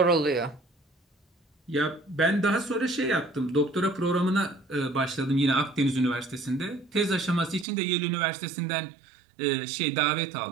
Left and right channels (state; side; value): drops out; left; at 7.7 s